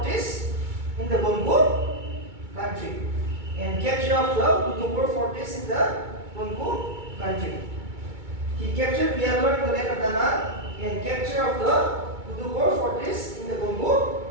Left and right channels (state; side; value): late; left; 2.2 ms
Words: in the Kongu country. And capture of the Kutupur fortress in the Kongu country. He captured Vialor in the land of Nanan and capture of the Kutupur fortress in the Kongu